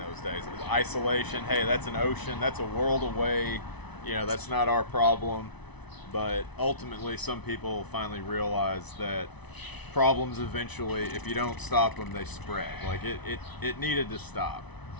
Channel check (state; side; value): late; right; 1.0 ms